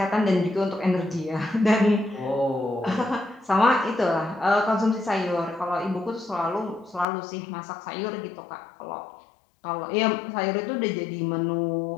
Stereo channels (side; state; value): right; drops out; at 7.1 s